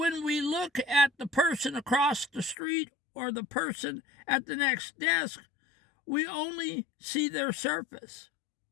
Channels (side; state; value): right; drops out; at 2.6 s